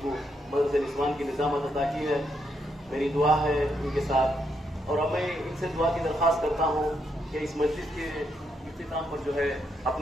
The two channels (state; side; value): normal; both; correlation 0.78